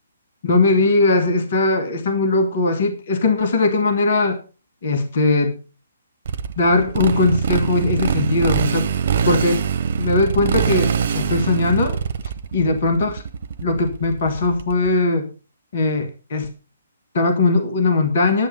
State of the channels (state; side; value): inverted; both; correlation -0.57